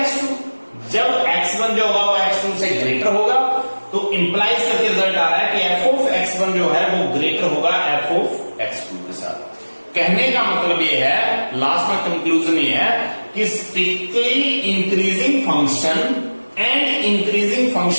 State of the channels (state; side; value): inverted; both; correlation -1.00